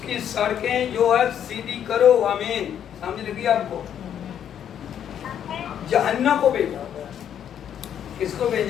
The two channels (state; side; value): quieter; right; 9.4 dB